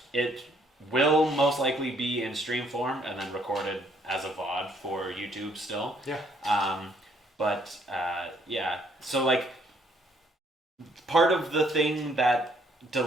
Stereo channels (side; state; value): both; normal; correlation 0.66